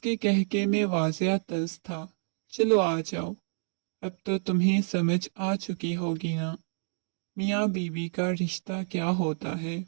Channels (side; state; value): left; silent; digital silence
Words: کہکے میں واضح طنز تھا۔ چلو آ جاؤ، اب تو تمہیں سمجھ آ چکی ہوگی نا میاں بیوی کا رشتہ کیا ہوتا ہے۔